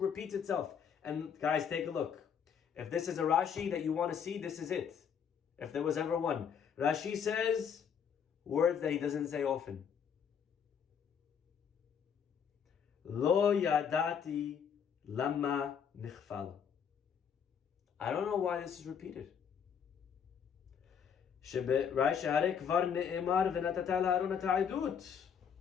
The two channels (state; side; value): quieter; right; 7.5 dB